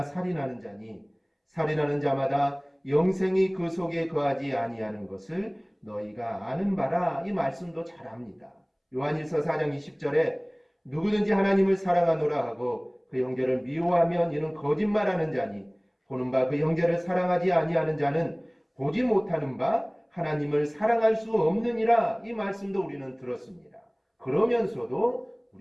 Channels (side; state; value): both; identical; correlation 1.00